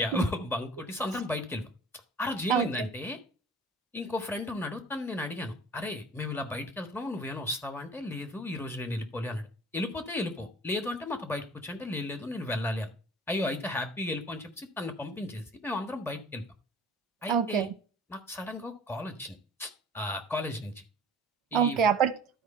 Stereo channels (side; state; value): both; normal; correlation 0.47